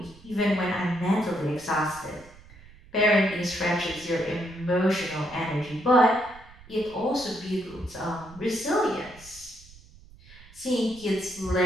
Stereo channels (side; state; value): right; noise; rumble, 22 dB below the sound